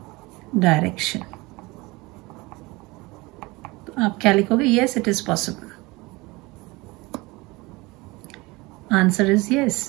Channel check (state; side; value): quieter; left; 23.2 dB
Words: direction. तो आप क्या लिखोगे, yes it is possible. Answer is yes,